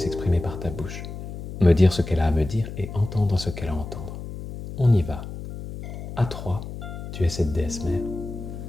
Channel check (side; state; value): left; noise; hum, 9 dB below the sound